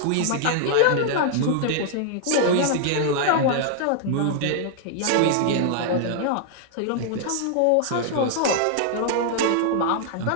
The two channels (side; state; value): both; different; correlation -0.01